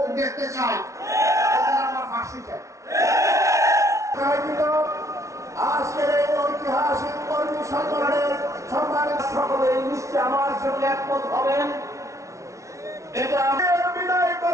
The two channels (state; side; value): late; left; 0.14 ms